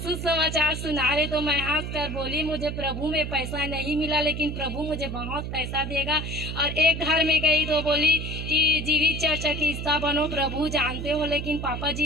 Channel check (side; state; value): right; noise; hum, 5 dB below the sound